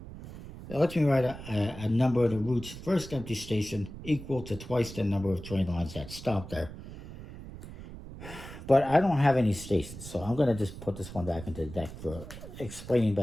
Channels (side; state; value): right; noise; rumble, 13 dB below the sound